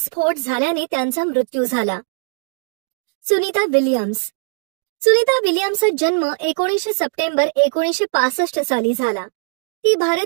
झाल्याने त्यांचा मृत्यू झाला. सुनीता विल्यम्स. सुनीता विल्यम्सचा जन्म 19 सप्टेंबर 1965 साली झाला. ती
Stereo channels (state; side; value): silent; left; digital silence